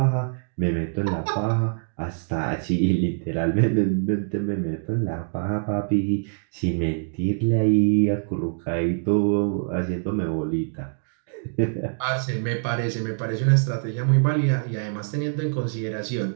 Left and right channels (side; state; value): left; silent; digital silence